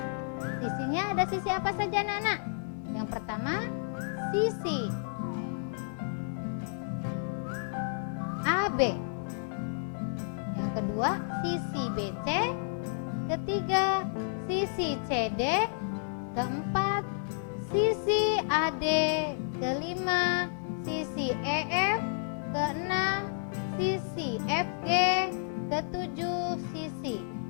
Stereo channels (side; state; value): right; silent; digital silence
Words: Sisinya ada sisi apa saja, anak-anak? Yang pertama, sisi AB. Yang kedua, sisi BC. Ketiga, sisi CD. Keempat, sisi AD. Kelima, sisi EF. Keenam, sisi FG. Ketujuh, sisi